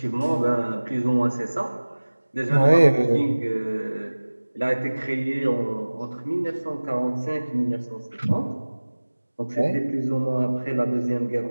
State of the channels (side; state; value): both; inverted; correlation -1.00